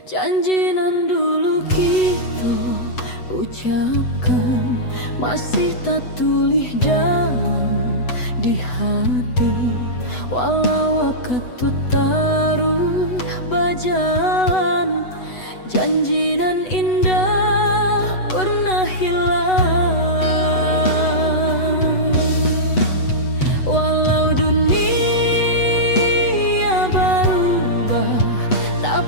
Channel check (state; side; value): late; right; 8.0 ms